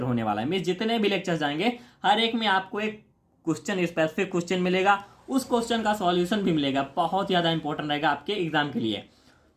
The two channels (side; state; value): both; identical; correlation 1.00